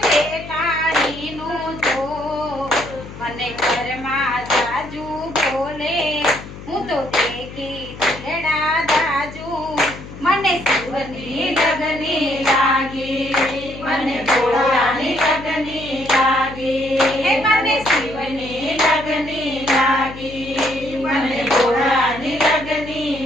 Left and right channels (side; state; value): left; noise; hum, 14 dB below the sound